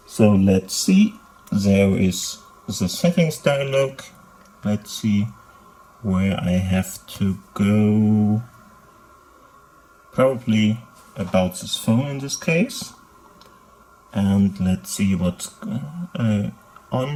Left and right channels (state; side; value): identical; both; correlation 1.00